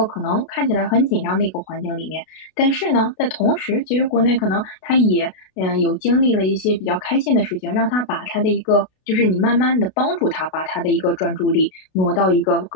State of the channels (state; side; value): late; right; 32 ms